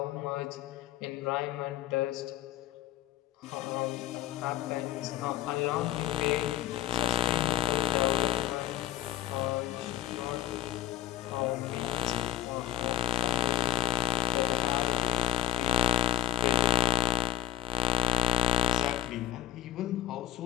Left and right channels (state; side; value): quieter; right; 12.4 dB